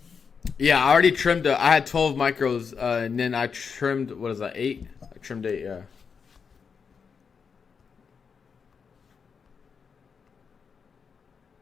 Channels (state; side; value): quieter; right; 6.0 dB